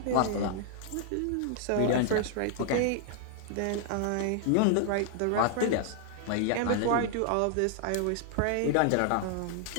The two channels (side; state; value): both; different; correlation -0.01